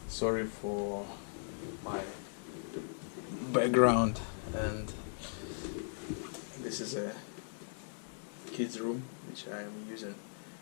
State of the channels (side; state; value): right; silent; digital silence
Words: Sorry for my background, and this is a kids room which I am using